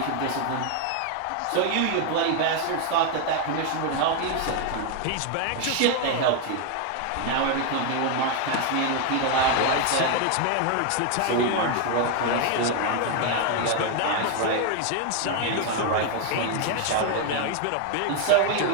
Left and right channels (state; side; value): different; both; correlation 0.01